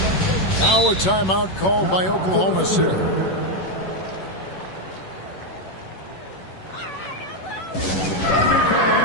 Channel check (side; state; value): right; late; 11 ms